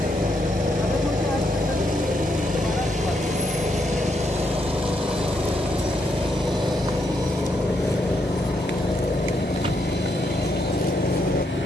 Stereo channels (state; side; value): normal; both; correlation 0.78